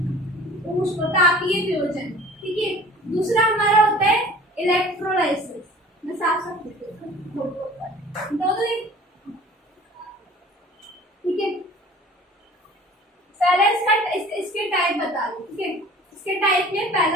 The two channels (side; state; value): both; normal; correlation 0.47